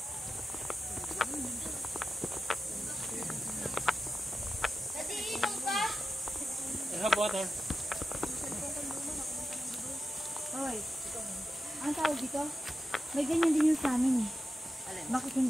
I have water. Hoy, ang tawag dito? May ganyan din yung sa amin eh. Bakit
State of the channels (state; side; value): normal; both; correlation 0.92